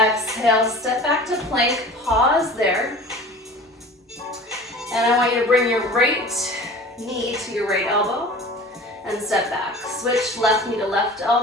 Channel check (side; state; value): both; normal; correlation 0.40